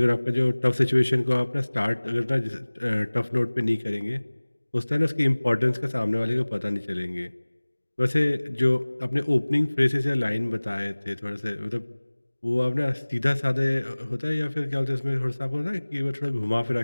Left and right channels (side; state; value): both; inverted; correlation -1.00